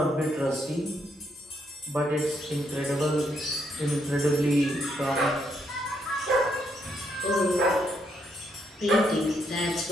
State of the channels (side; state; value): both; normal; correlation 0.75